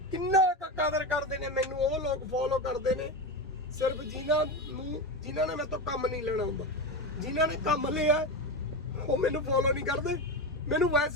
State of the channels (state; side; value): normal; both; correlation 0.19